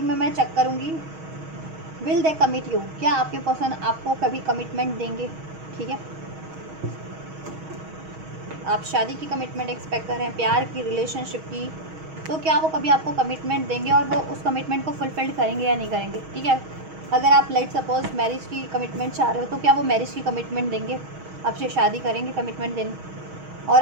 में मैं चेक करूँगी विल दे कमिट यू, क्या आपके पर्सन आपको कभी कमिटमेंट देंगे। ठीक है, आप शादी की कमिटमेंट एक्सपेक्ट कर रहे हैं, प्यार की, रिलेशनशिप की, तो क्या वो कभी आपको कमिटमेंट देंगे और वो उस कमिटमेंट को फुलफिल करेंगे या नहीं करेंगे। ठीक है, अगर आप लेट सपोज मैरिज की कमिटमेंट चाह रहे हो तो क्या वो मैरिज की कमिटमेंट देंगे, आपसे शादी करेंगे कमिटमेंट देंगे। और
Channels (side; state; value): left; late; 6.3 ms